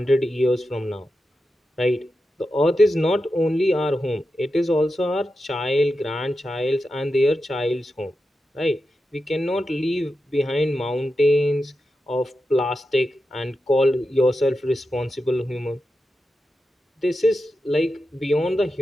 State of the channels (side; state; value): both; normal; correlation 0.90